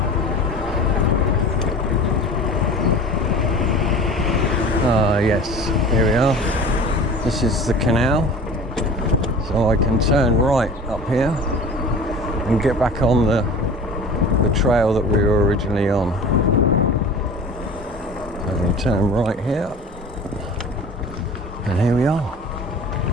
Yes, here we are. This is the canal, so I can turn right up here and get back on the the trail that we were originally on. So we turn right here, and here we are.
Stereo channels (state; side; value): normal; both; correlation 0.39